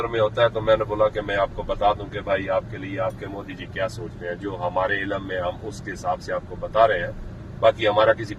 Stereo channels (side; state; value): both; identical; correlation 1.00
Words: में होता है। तो मैंने बोला कि मैं आपको बता दूं कि भाई आपके लिए आपके मोदी जी क्या सोचते हैं, जो हमारे इल्म में हम उसके हिसाब से आपको बता रहे हैं। बाकी हमारा किसी